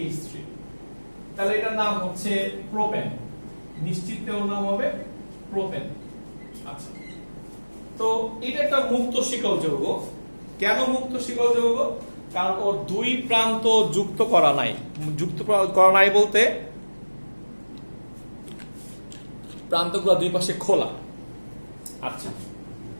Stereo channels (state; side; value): inverted; both; correlation -1.00